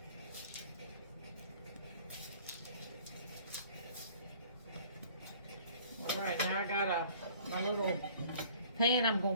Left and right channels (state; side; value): inverted; both; correlation -0.52